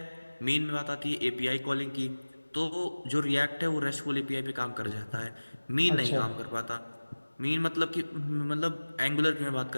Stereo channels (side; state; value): both; inverted; correlation -1.00